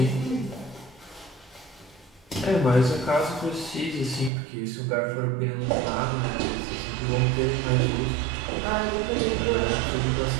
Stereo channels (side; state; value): left; drops out; at 4.3 s